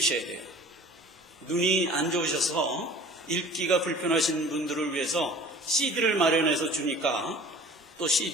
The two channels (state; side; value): normal; both; correlation 0.46